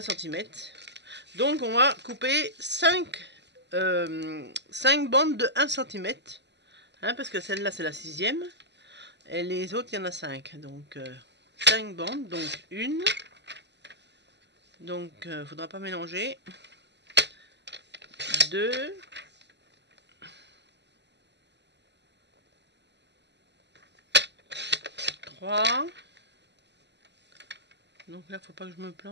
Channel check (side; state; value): left; late; 0.50 ms